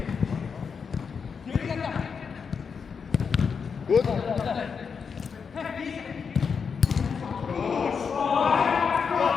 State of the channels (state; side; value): quieter; right; 6.0 dB